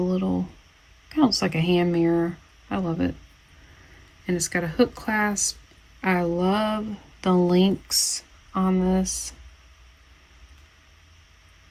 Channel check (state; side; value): identical; both; correlation 1.00